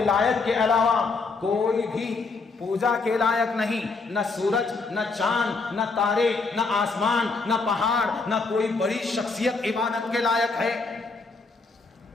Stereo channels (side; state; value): right; quieter; 4.1 dB